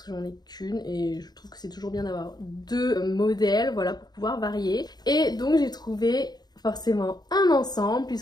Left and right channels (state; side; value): late; right; 0.20 ms